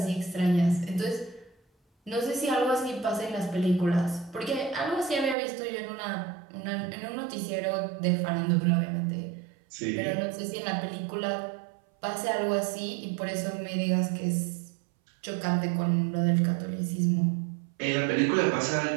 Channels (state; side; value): drops out; left; at 5.4 s